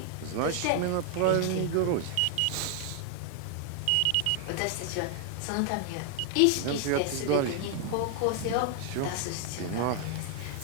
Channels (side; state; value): both; different; correlation 0.00